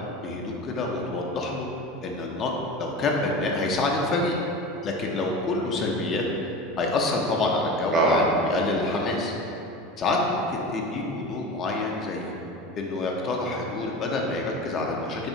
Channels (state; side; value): normal; both; correlation 0.31